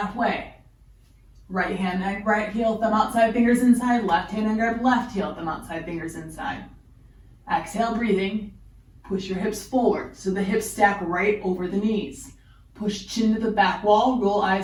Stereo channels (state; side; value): identical; both; correlation 1.00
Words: Right hand and right heel, thumb outside, fingers inside. Left hand and grab left heel, thumb outside, fingers inside. Exhale, breathing. Push your hips forward so the hips stack right over the knees. Push chin to the back wall, roll